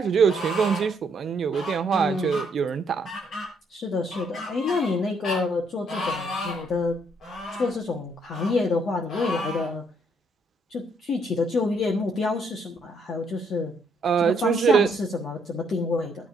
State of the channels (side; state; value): both; normal; correlation 0.70